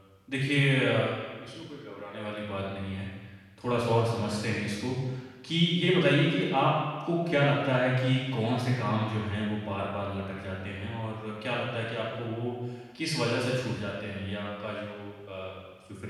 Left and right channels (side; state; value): both; identical; correlation 1.00